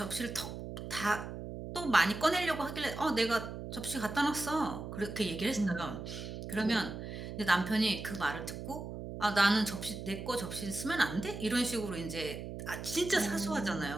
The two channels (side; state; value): right; noise; hum, 8 dB below the sound